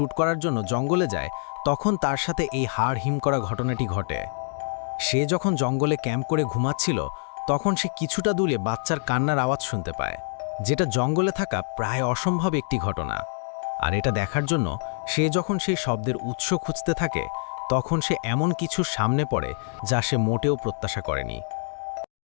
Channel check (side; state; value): right; silent; digital silence